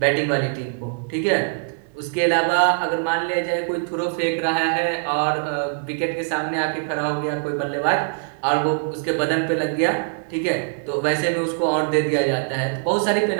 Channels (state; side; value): silent; left; 64 dB below the other